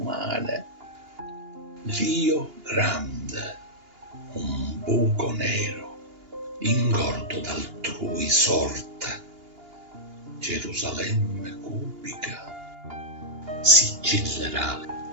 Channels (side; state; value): left; late; 2.8 ms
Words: L'io grande, un buco nero, ingordo d'altrui sorte. Gerusalemme cubica sigillerà